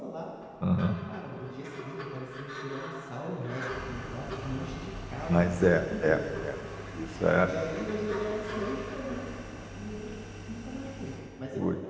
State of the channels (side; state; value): both; identical; correlation 1.00